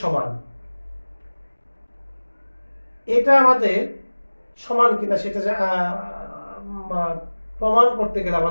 সমান। এটা আমাদের সমান কিনা সেটা প্রমাণ করতে গেলে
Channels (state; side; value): inverted; both; correlation -1.00